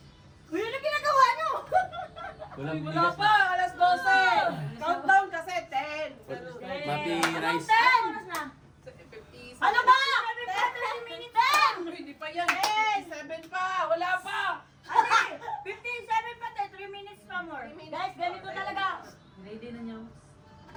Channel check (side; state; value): both; identical; correlation 1.00